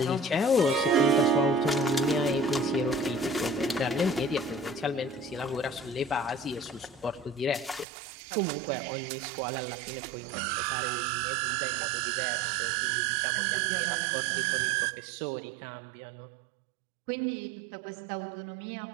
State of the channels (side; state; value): left; drops out; at 7.9 s